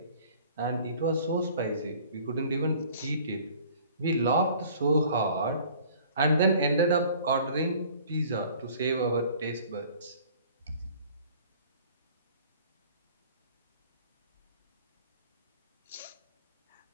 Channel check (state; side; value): inverted; both; correlation -0.51